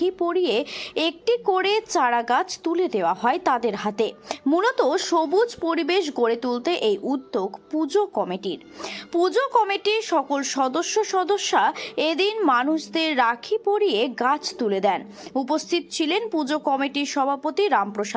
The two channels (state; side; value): identical; both; correlation 1.00